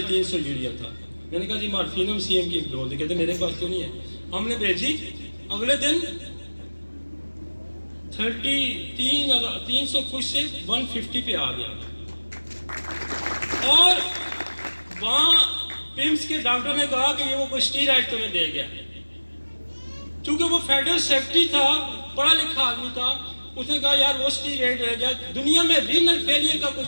यूरिया था। मैंने कहा जी मॉर्फिनम CM की डोज दे, कहते मेरे पास तो नहीं है। हमने भेजी, अगले दिन 300 कुछ से 150 पे आ गया। और वहाँ पिम्स के डॉक्टर ने कहा कि ये वो कोई स्टीरॉइड तुम्हें दे गया, क्योंकि वो फेडरल सेक्रेटरी था, पढ़ा लिखा आदमी था। उसने कहा यार वो स्टीरॉइड रह गया, दुनिया में रीनल फेलियर का कुछ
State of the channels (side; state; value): both; inverted; correlation -1.00